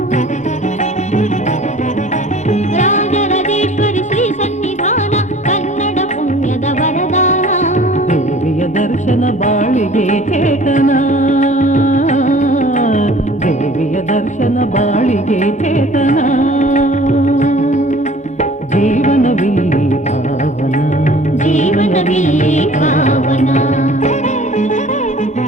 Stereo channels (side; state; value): both; normal; correlation 0.49